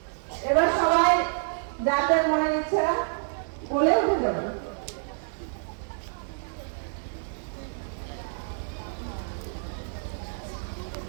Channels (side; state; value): left; silent; digital silence